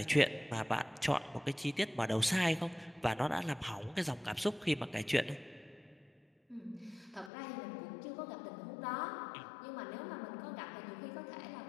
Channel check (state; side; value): drops out; right; at 7.3 s